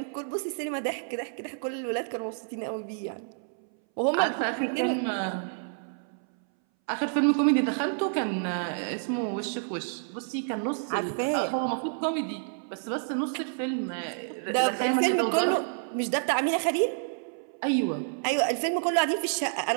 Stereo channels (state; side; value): silent; left; 59 dB below the other